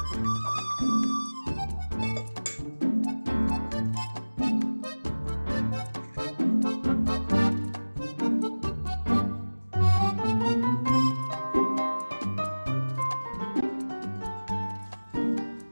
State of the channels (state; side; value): inverted; both; correlation -1.00